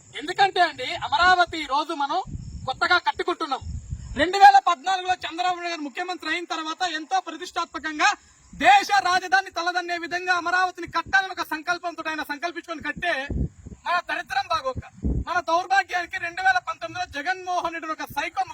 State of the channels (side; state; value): both; identical; correlation 1.00